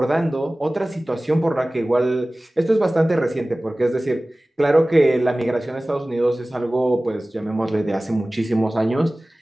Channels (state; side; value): normal; both; correlation 0.98